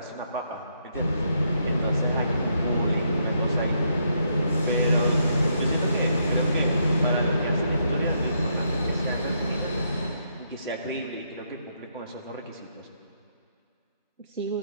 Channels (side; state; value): both; inverted; correlation -0.76